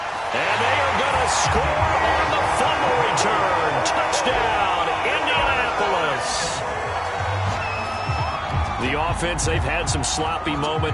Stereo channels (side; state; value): both; identical; correlation 1.00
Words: And they are going to score on the fumble return. Touchdown, Indianapolis. The offense, they've had some sloppy